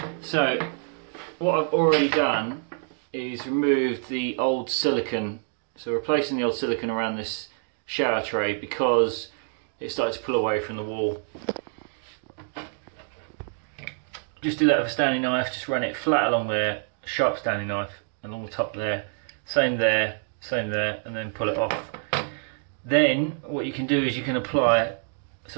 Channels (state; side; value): silent; left; 60 dB below the other